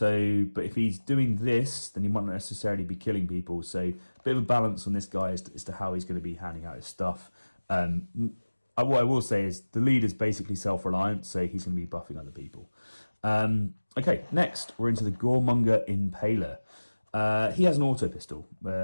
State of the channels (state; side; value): inverted; both; correlation -1.00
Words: but if he's doing this, then he might not necessarily be killing people. So, a bit of a balance on this guy as to how he's going to be handing out his stuff. What I will say is the leader's basically self-reliant, so he's going to be buffing other people. Okay, next we're into the Goremonger Impaler. He has an auto pistol,